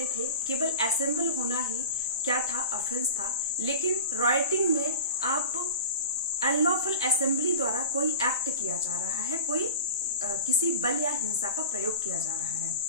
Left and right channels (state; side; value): inverted; both; correlation -0.33